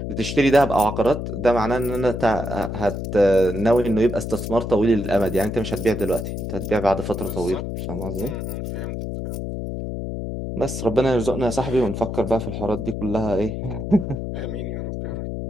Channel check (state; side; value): noise; left; hum, 5 dB below the sound